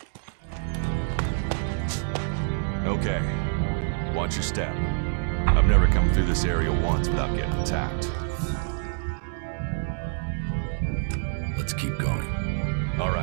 Okay. Watch your step. I've never come through this area once without getting attacked. Let's keep going. All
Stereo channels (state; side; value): silent; left; digital silence